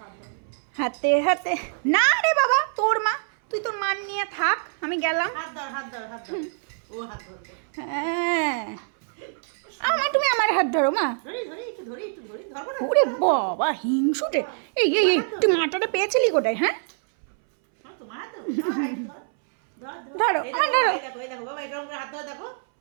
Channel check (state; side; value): silent; left; 62 dB below the other